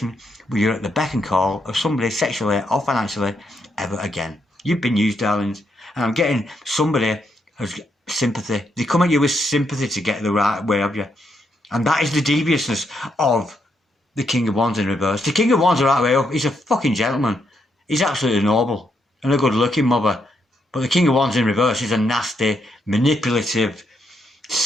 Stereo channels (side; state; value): both; normal; correlation 0.78